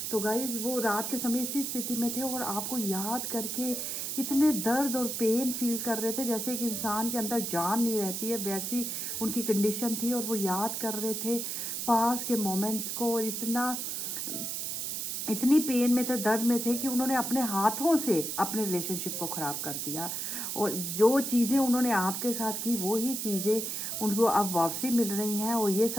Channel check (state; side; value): noise; right; hiss, 3 dB below the sound